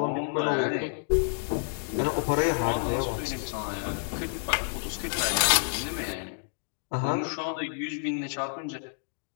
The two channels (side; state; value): right; silent; digital silence